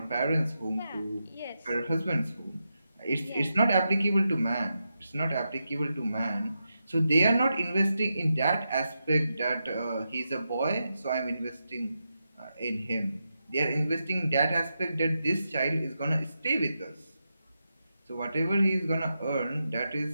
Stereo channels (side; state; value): both; inverted; correlation -0.87